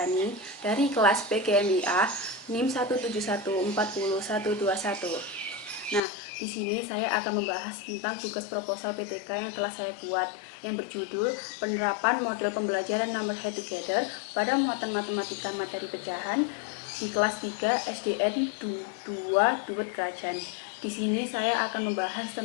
dari kelas PGMIA NIM 171402121. Nah, di sini saya akan membahas tentang tugas proposal PTK yang telah saya buat yang berjudul Penerapan Model Pembelajaran Number Head Together pada muatan matematika materi pecahan di kelas 3 SDN 2 Duet Kerajaan. Di sini saya akan membahas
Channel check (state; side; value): drops out; right; at 6.0 s